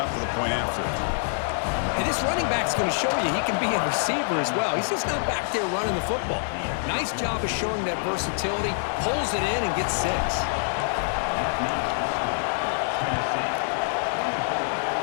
for the point after. And this running back's going to show you he can be a receiver as well. He's just not back there running the football. Nice job of showing that versatility. Pulls it in and gets 6.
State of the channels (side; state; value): right; silent; digital silence